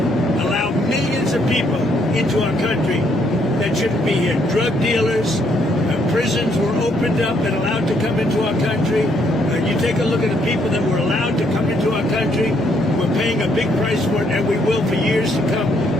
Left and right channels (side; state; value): both; normal; correlation 0.71